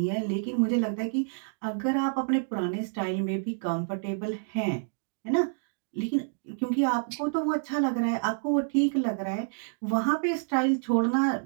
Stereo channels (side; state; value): left; silent; digital silence